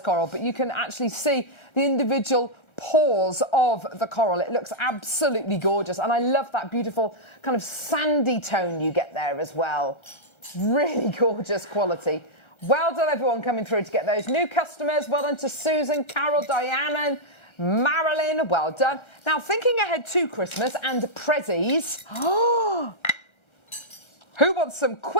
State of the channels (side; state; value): right; late; 1.3 ms